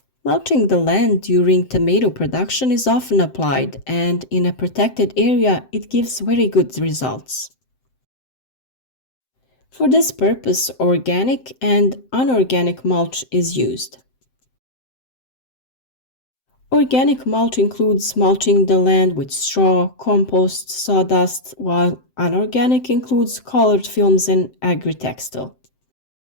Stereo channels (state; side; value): late; right; 7.7 ms